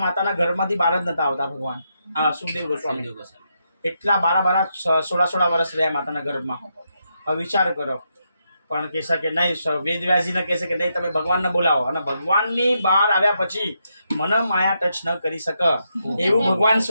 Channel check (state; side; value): inverted; both; correlation -0.81